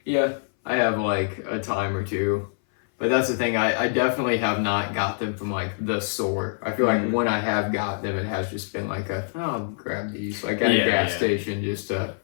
Yeah, I have like a time or two. But that's the thing, I definitely have not got them from, like, the store. I feel like when I have got them, it has just been like I'll grab these, like, at a gas station just to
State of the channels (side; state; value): right; silent; 60 dB below the other